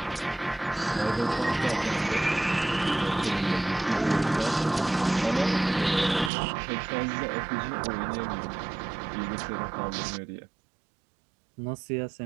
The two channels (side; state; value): left; drops out; at 6.3 s